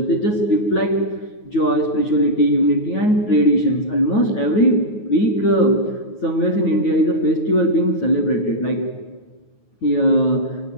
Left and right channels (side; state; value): right; late; 9.5 ms